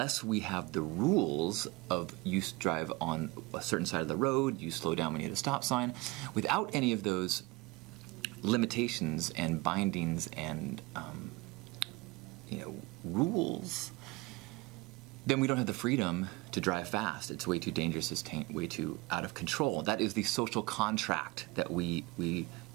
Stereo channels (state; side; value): quieter; left; 23.4 dB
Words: we have the rules of you drive on a certain side of the road, you slow down when you hit a stop sign, without any of those limitations and bindings and rules, then we don't have the freedom to drive fast. It's way too dangerous. It's way too out of control. That is the social contract that